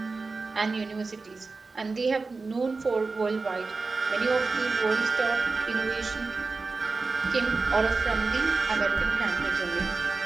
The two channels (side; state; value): left; quieter; 4.0 dB